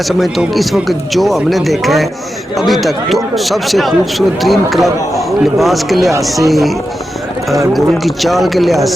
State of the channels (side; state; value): both; normal; correlation 0.90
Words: समझता हूँ कि इस वक्त जो हमने देखा है अभी तक, तो सबसे खूबसूरत तरीन क्लब लिबास के लिहाज से, घोड़ों की चाल के लिहाज